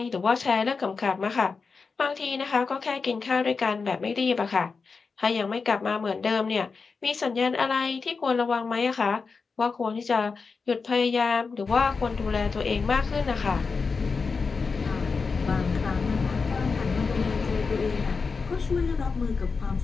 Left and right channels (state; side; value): quieter; right; 4.8 dB